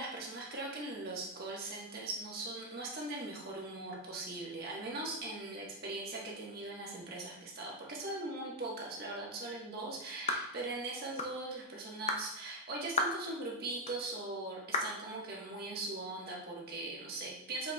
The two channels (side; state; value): both; normal; correlation 0.01